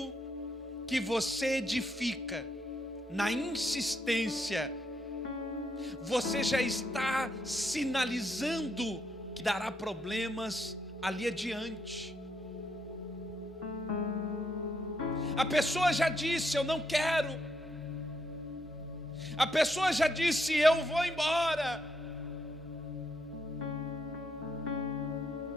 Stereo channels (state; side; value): normal; both; correlation 0.77